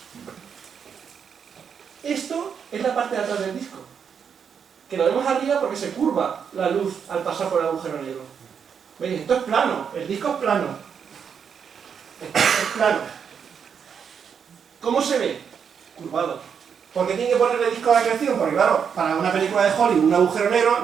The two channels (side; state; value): left; quieter; 7.1 dB